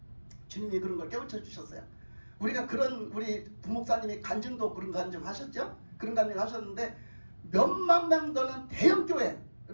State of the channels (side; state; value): both; inverted; correlation -1.00